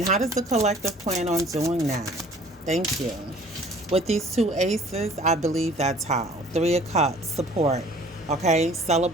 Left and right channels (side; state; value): both; normal; correlation 0.52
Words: how does the collective plan on doing that? Thank you. With these two aces, I believe that's how. Three of Cups, support, okay?